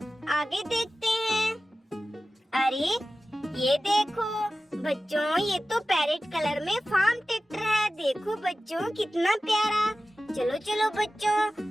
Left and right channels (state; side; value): normal; both; correlation 0.95